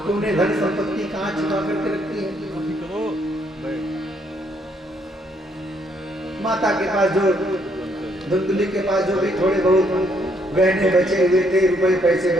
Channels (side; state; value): both; normal; correlation 0.70